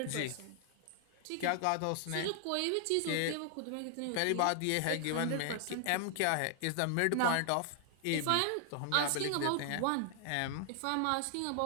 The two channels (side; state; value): both; different; correlation 0.00